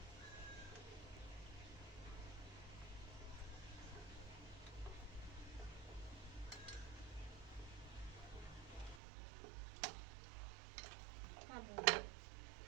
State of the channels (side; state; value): left; drops out; at 9.0 s